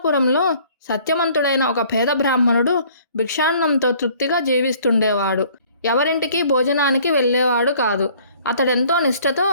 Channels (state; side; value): inverted; both; correlation -0.56